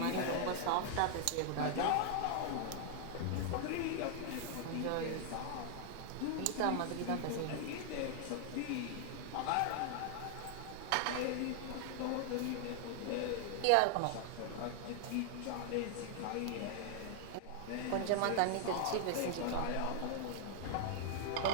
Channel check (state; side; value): different; both; correlation 0.00